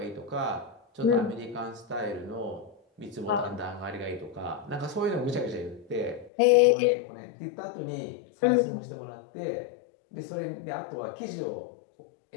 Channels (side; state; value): right; drops out; at 6.3 s